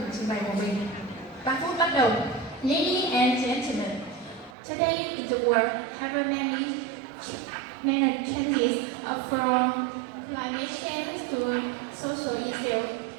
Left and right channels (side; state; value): left; drops out; at 4.5 s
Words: trình bày của mình. 3 phút bắt đầu. Ladies and gentlemen, today in the world have many changes from climate change to social issues.